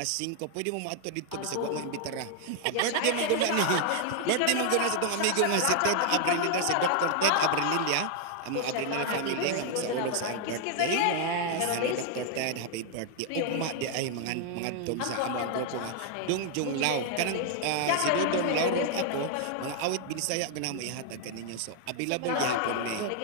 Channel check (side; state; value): both; different; correlation 0.00